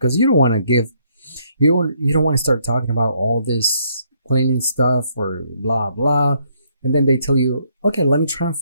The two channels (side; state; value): both; inverted; correlation -0.71